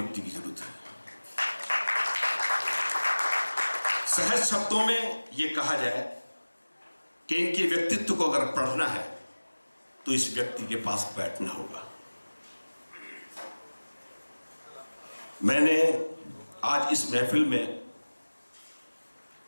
की जरूरत है। सहज शब्दों में यह कहा जाए कि इनके व्यक्तित्व को अगर पढ़ना है तो इस व्यक्ति के पास बैठना होगा। मैंने आज इस महफिल में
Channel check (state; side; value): inverted; both; correlation -1.00